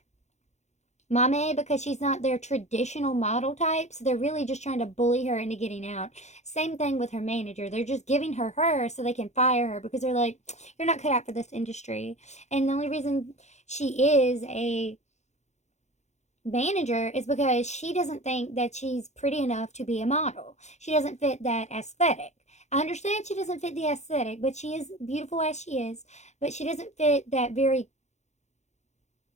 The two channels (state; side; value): late; right; 0.33 ms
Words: Mame because she's not their traditional model type. So they're really just trying to bully her into getting out. Same thing with her manager. They're just giving her so they can fire her because they're like, you're not cut out for this industry. And the only reason she is a manager is because she doesn't think that she's pretty enough to be a model. She doesn't fit that aesthetic. I understand she doesn't fit the aesthetic, but she is beautiful as she is, but she doesn't fit that very